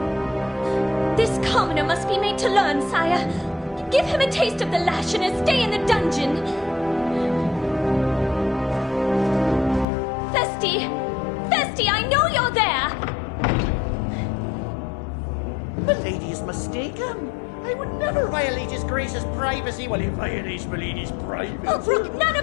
This commoner must be made to learn, sire. Give him a taste of the lash and a stay in the dungeon. Festy! Festy, I know you're there! Milady is mistaken. I would never violate His Grace's privacy while he violates Milady's privacy. Oh, brook none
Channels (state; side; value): drops out; right; at 9.9 s